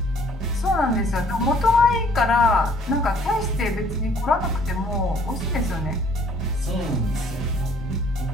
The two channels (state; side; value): normal; both; correlation 0.59